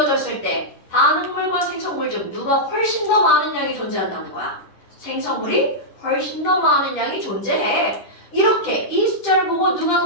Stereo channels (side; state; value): right; late; 11 ms